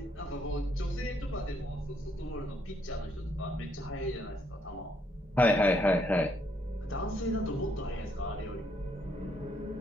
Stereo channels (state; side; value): normal; both; correlation 0.71